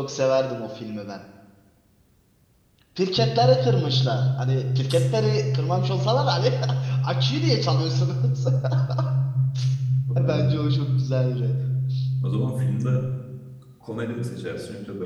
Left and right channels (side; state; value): both; identical; correlation 1.00